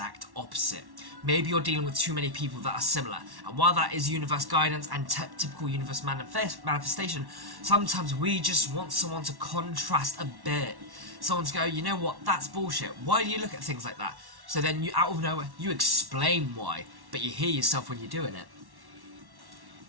opposite. Maybe you're dealing with too many people that are similar, and while that is universe guidance and typical universe manifestation, sometimes we just want someone to contrast a bit. Someone to go, you know what, that's bullshit. Why do you look at things like that? So then you, out of nowhere, you explain why, but you hear yourself when you're doing it.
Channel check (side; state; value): left; late; 1.1 ms